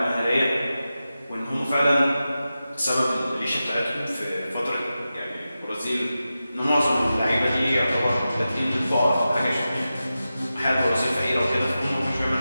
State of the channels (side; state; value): both; inverted; correlation -0.93